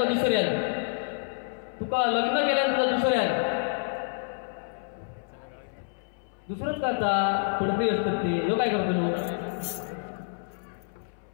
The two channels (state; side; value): silent; right; 59 dB below the other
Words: दुसऱ्यात तुका लग्न केल्यान तुका दुसऱ्यात दुसरंच करता पुढे असतात ते लोक काय करतो